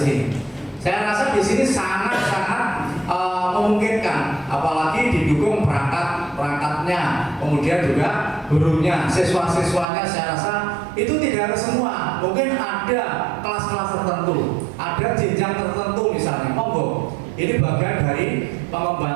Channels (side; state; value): left; drops out; at 9.9 s